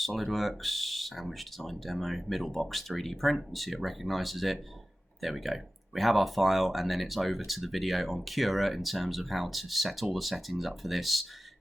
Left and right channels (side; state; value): both; normal; correlation 0.96